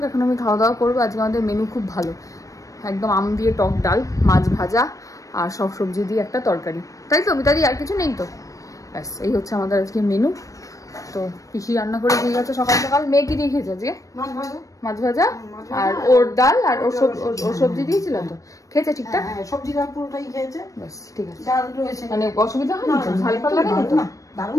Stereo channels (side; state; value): right; late; 0.16 ms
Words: এখন আমি খাওয়া দাওয়া করবো। আজকে আমাদের মেনু খুব ভালো, একদম আম দিয়ে টক ডাল, মাছ ভাজা আর সব সবজি দিয়ে একটা তরকারি, তাই তো মিতাদি? আর কিছু নেই তো? ব্যাস এই হচ্ছে আমাদের আজকে মেনু। তো পিসি রান্না করে দিয়ে গেছে সকাল সকাল। মেয়ে কি দিয়ে খেয়েছে আজকে? মাছ ভাজা আর ওর ডাল আর ওর সবজি দিয়েছিল তো, খেয়েছে ঠিকঠাক? সবজি ডাল পুরোটাই খেয়েছে। ব্যাস ঠিক আছে, ডাল রয়েছে, মানে অসুবিধা হয়নি তো? ঝাল ফাল লাগে না তো?